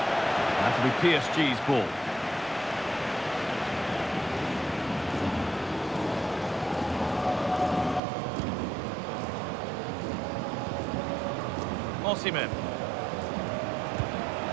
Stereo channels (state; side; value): drops out; left; at 8.0 s